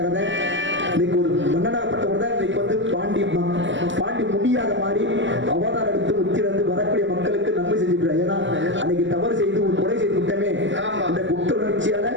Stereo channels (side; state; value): left; late; 0.54 ms